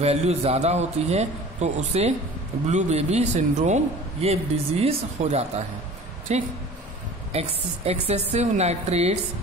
ज़्यादा होती है तो उसे ब्लू बेबी सिंड्रोम ये डिजीज हो जाता है। ठीक, excessive nitrates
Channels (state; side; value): normal; both; correlation 0.42